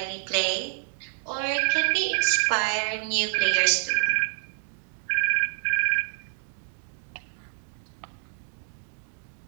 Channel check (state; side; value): silent; left; digital silence